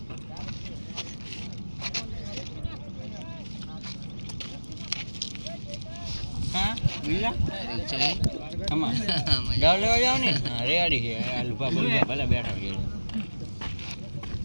હા બીજા કમા ગાવ લેવા જાવ ને રેડી છે અલ્ફા બોલવા ભલે બેઠા છે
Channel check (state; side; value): inverted; both; correlation -1.00